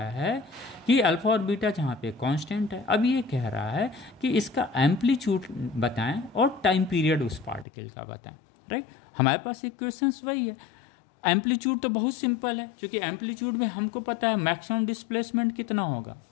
है कि अल्फा और बीटा जहाँ पे कांस्टेंट है, अब ये कह रहा है कि इसका एम्पलीट्यूड बताएं और टाइम पीरियड उस पार्टिकल का बताएं, राइट। हमारे पास इक्वेशंस वही है। एम्पलीट्यूड तो बहुत सिंपल है, क्योंकि एम्पलीट्यूड में हमको पता है मैक्सिमम डिस्प्लेसमेंट कितना होगा।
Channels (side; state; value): right; drops out; at 7.7 s